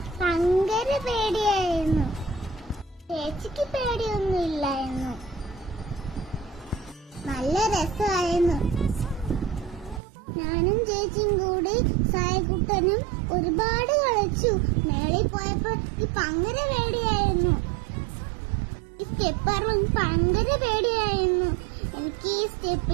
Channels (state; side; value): drops out; left; at 10.0 s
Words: ഭയങ്കര പേടിയായിരുന്നു. ചേച്ചിക്ക് പേടിയൊന്നും ഇല്ലായിരുന്നു. നല്ല രസമായിരുന്നു. ഞാനും ചേച്ചിയും കൂടി സായക്കുട്ടനും ഒരുപാട് കളിച്ചു. മേളിൽ പോയപ്പോ ഭയങ്കര പേടിയായിരുന്നു. ഈ സ്റ്റെപ്പ് ഭയങ്കര പേടിയായിരുന്നു. എനിക്ക് ഈ